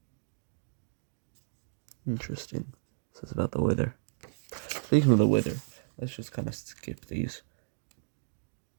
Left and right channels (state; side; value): silent; left; digital silence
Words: Interesting. This is about the wither. Speaking of the wither, let's just kind of skip these.